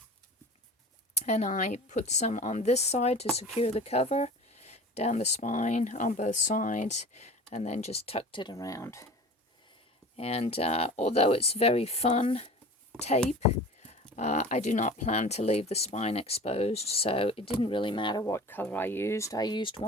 And I put some on this side to secure the cover, down the spine on both sides, and then just tucked it around. And although it's very fun tape, I do not plan to leave the spine exposed, so it didn't really matter what color I used. I used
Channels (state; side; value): normal; both; correlation 0.39